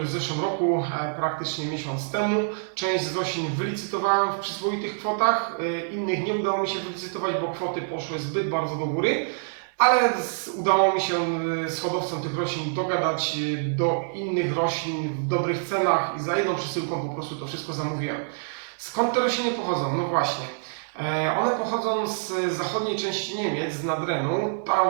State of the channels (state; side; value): silent; left; digital silence